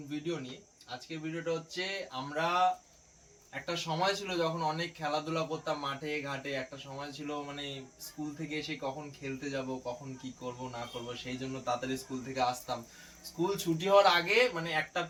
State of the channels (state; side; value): identical; both; correlation 1.00